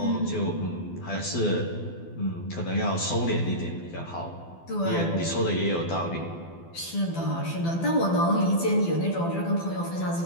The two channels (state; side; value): late; right; 12 ms